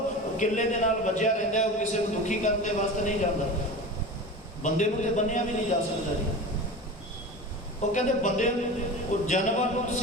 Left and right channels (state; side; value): normal; both; correlation 0.31